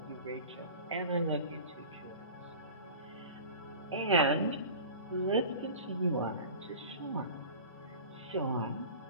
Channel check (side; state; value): both; inverted; correlation -0.38